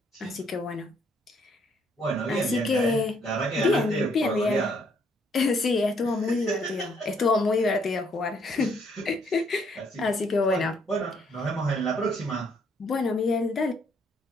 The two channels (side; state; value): both; normal; correlation 0.68